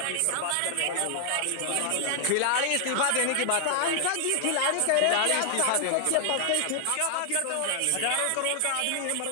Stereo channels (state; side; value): different; both; correlation 0.00